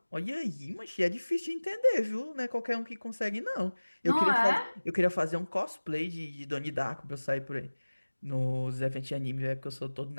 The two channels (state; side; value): inverted; both; correlation -1.00